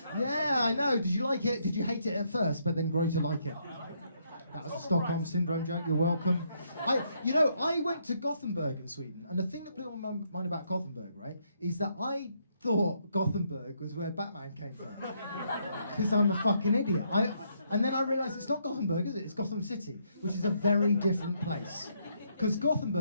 Yeah, I know. Did you like it? Did you hate it at first, but then grow to like it? That was a Stockholm syndrome joke. You're welcome. I went to Gothenburg in Sweden, and the thing that blew my mind about Gothenburg, right, is that I thought Gothenburg was where Batman came from, because I'm a fucking idiot. And then I realised it's not Gothenburg, is it? It's Gotham City, which is a very different place. Because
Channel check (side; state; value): both; inverted; correlation -0.74